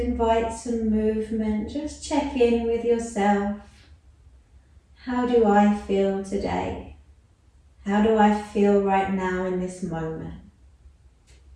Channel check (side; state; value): both; identical; correlation 1.00